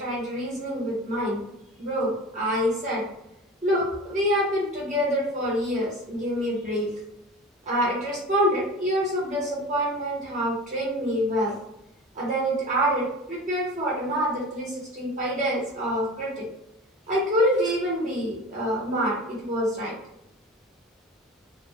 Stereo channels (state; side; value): normal; both; correlation 0.35